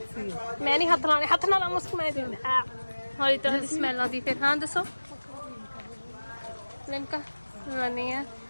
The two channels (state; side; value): inverted; both; correlation -1.00